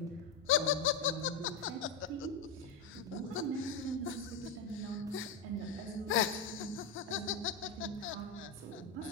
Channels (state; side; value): quieter; right; 4.9 dB